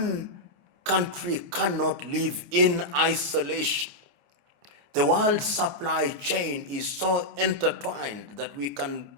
country cannot live in isolation. The world supply chain is so intertwined that we can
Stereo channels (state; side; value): late; left; 28 ms